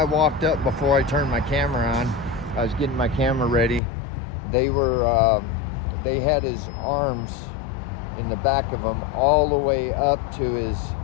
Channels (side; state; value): right; drops out; at 3.8 s